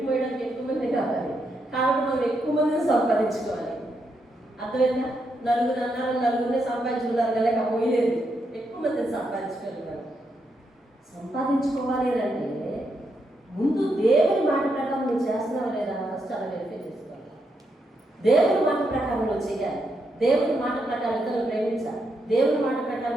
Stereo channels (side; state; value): both; normal; correlation 0.81